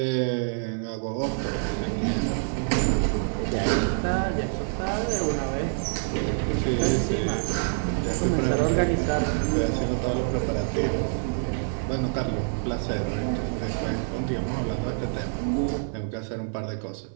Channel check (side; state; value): left; silent; 61 dB below the other